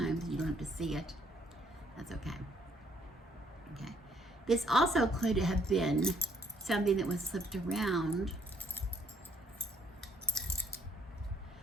You don't have to see it. That's okay. Okay. This also could have been something that was slipped around.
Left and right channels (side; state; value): both; normal; correlation 0.66